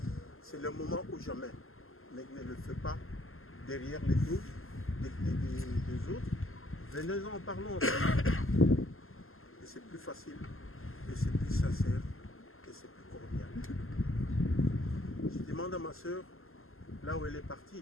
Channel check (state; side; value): late; right; 0.61 ms